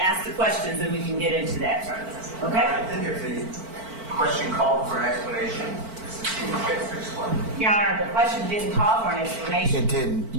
the questions and we can get into that further. Okay? I think if the question called for an explanation, Mr. Stephens gets to explain. Your Honor, the question didn't call for an explanation. It did.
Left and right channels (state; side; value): late; left; 4.5 ms